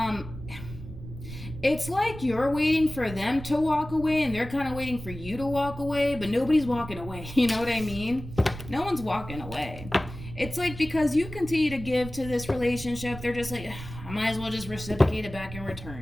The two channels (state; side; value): noise; right; rumble, 12 dB below the sound